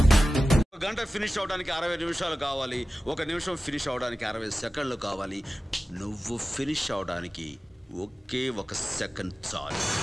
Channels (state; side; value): normal; both; correlation 0.95